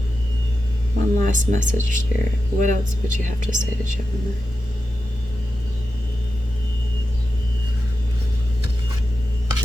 one last message, Spirit. What else would you have to say to Gemini?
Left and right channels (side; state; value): both; normal; correlation 0.90